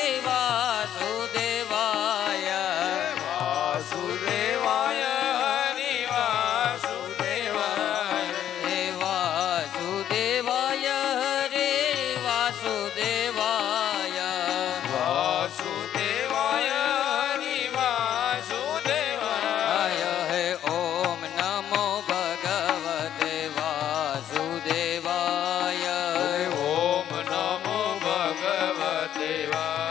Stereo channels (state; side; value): quieter; right; 10.7 dB